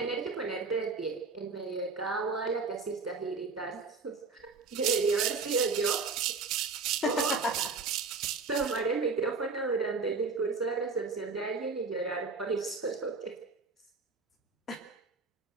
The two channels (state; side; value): quieter; left; 4.3 dB